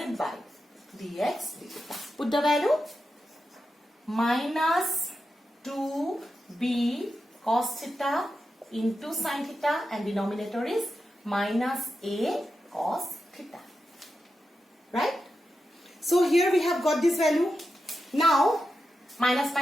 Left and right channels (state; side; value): normal; both; correlation 0.89